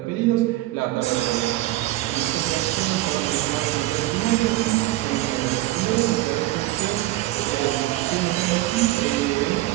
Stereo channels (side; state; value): left; quieter; 16.9 dB